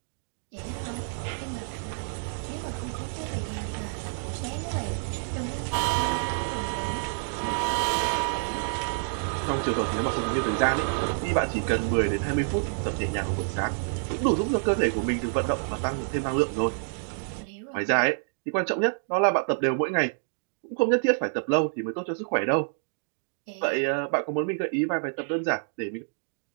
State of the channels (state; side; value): silent; left; digital silence